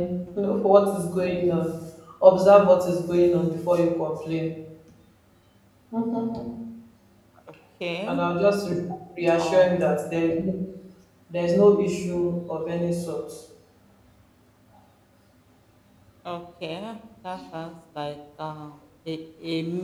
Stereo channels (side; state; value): both; identical; correlation 1.00